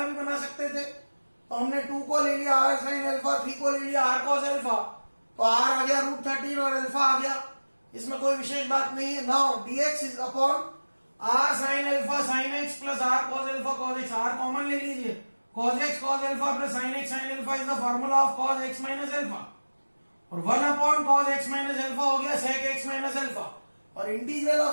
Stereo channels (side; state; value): both; inverted; correlation -1.00